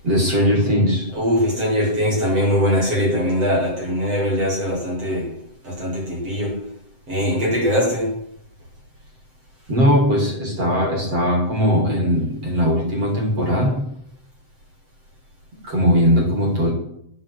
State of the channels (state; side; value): late; left; 7.8 ms